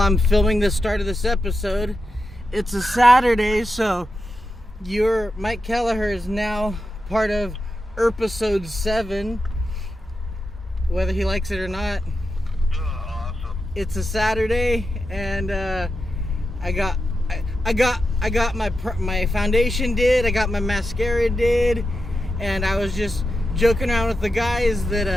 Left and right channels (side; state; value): both; normal; correlation 0.89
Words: filming the start of this episode. It's a Saturday, so Mike Kelleher is now part of episode 7, whether he likes it or not. Awesome. It's a Saturday, and I got my foundation did, I got my mascara did, and I was just joking around with the guys